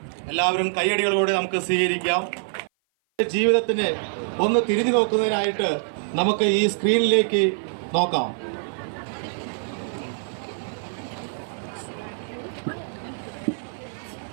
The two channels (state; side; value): silent; left; 56 dB below the other